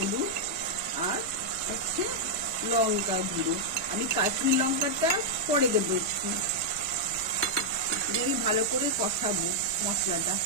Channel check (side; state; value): both; normal; correlation -0.04